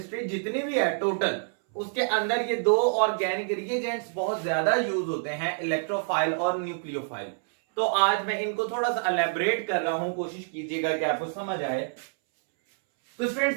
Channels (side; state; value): left; silent; 60 dB below the other